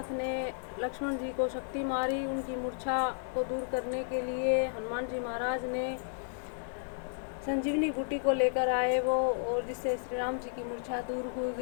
ने लक्ष्मण जी को शक्ति मारी। उनकी मूर्छा को दूर करने के लिए हनुमान जी महाराज ने संजीवनी बूटी को लेकर आए वो, और जिससे श्री राम जी की मूर्छा दूर हो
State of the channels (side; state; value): right; silent; digital silence